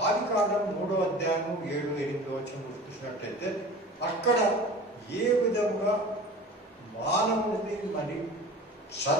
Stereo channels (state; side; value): normal; both; correlation 0.39